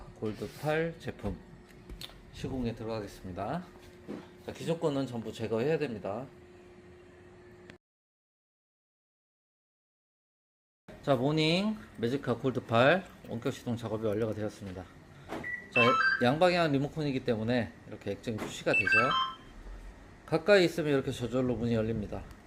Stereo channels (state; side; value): identical; both; correlation 1.00